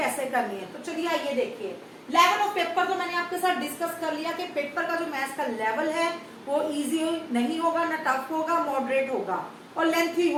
करनी है। तो चलिए आइए देखिए, लेवल ऑफ पेपर तो मैंने आपके साथ डिस्कस कर लिया कि पेपर का जो मैथ्स का लेवल है वो इजी नहीं होगा, ना टफ होगा, मॉडरेट होगा और लेंथी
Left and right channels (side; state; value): both; identical; correlation 1.00